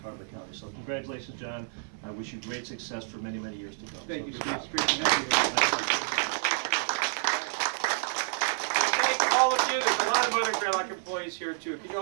of the county. So congratulations, John. I wish you great success for many, many years to come. Thank you, So, Steve. good It's job. great to have you. Thank all of you. There's a lot of other Greylock employees here too. Can you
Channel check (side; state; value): left; silent; 58 dB below the other